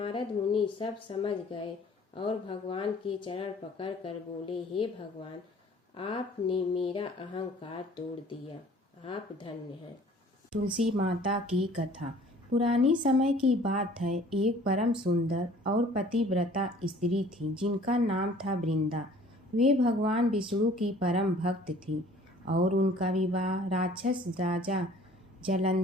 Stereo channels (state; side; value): normal; both; correlation 0.52